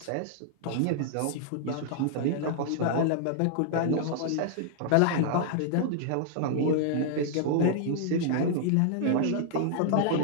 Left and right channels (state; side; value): different; both; correlation -0.01